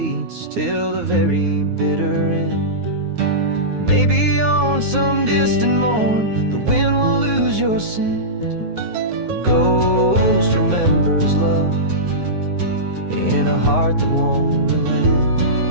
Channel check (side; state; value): left; late; 9.6 ms